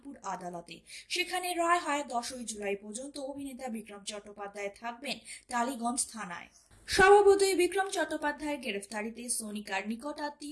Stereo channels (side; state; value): both; identical; correlation 1.00